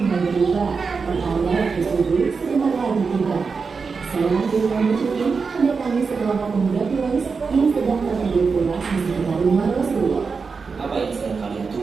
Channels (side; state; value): left; quieter; 5.0 dB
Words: mulai berubah, perayaan tersebut sebentar lagi tiba. Seorang kaum musyrikin mendatangi sekelompok pemuda Quraisy yang sedang tertidur pulas di sekitar rumah Rasulullah. Apa yang sedang kalian